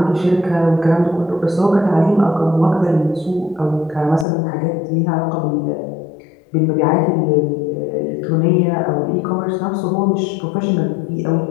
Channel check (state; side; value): drops out; right; at 4.2 s